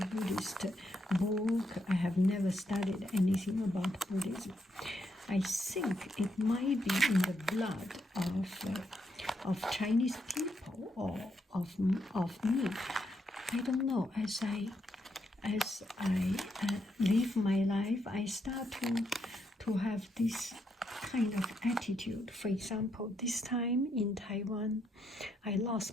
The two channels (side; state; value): both; normal; correlation 0.79